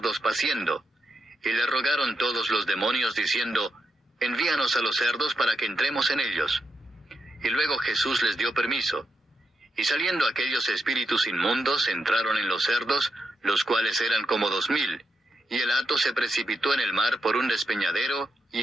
paciendo, y le rogaron todos los demonios diciendo: Envíanos a los cerdos para que entremos en ellos. Y luego Jesús les dio permiso. Y saliendo aquellos espíritus inmundos entraron en los cerdos, los cuales eran como 2000, y el hato se precipitó en el mar por un despeñadero,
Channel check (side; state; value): both; normal; correlation 0.84